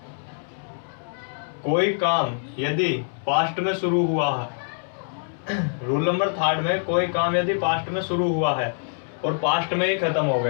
कोई काम यदि पास्ट में शुरू हुआ है रूल नंबर 3 में कोई काम यदि पास्ट में शुरू हुआ है और पास्ट में ही खत्म हो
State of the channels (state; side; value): silent; right; digital silence